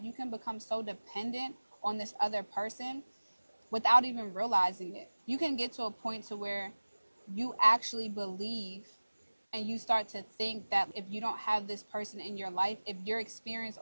you can become so dependent on this other person without even realizing it. You can get to a point to where you actually believe and you start to think that if you don't have this person in your life, if your experience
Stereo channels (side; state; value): both; inverted; correlation -1.00